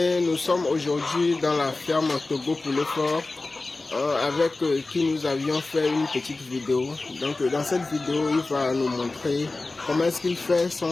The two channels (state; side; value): quieter; right; 3.3 dB